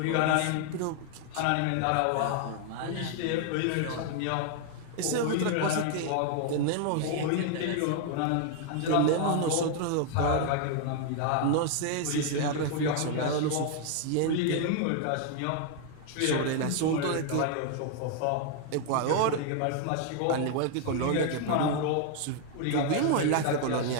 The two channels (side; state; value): both; different; correlation 0.00